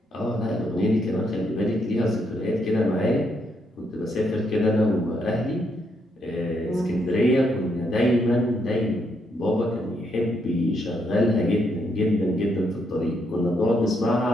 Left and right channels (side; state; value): both; normal; correlation 0.76